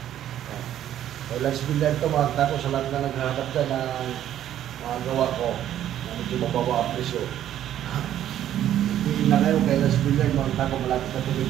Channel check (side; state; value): left; quieter; 11.4 dB